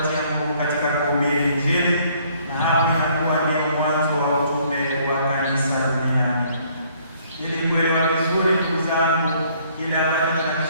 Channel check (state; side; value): inverted; both; correlation -0.63